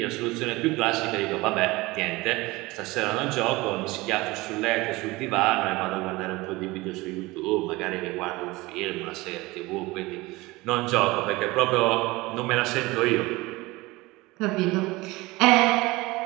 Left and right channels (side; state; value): left; quieter; 21.5 dB